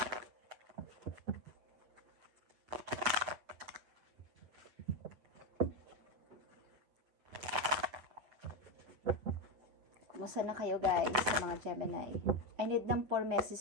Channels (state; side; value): late; left; 7.7 ms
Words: Kumusta na kayo guys sa mga Gemini? I need ng 4